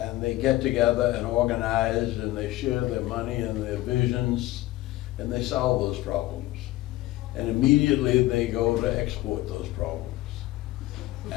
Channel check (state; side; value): quieter; right; 16.9 dB